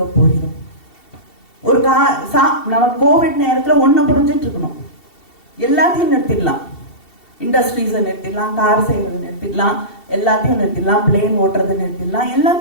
போகிறோம்? ஒரு நம்ம கோவிட் நேரத்தில் ஒன்றை புரிஞ்சிட்டு இருக்கணும், எல்லாத்தையும் நிறுத்திடலாம், இண்டஸ்ட்ரீஸை நிறுத்திடலாம், கார் செய்யறது நிறுத்திடலாம், எல்லாத்தையும் நிறுத்திடலாம், பிளேன் ஓட்டுறதை நிறுத்திடலாம்,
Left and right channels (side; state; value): right; late; 2.7 ms